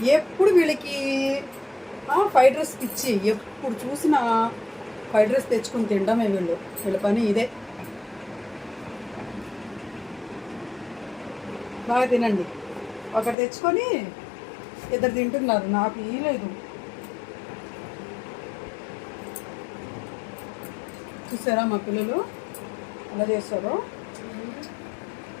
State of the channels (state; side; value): drops out; right; at 13.4 s